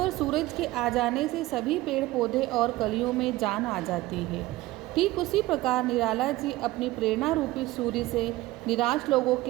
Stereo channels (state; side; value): quieter; left; 18.0 dB